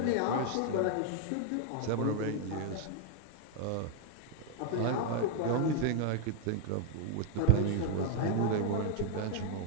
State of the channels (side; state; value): both; different; correlation 0.00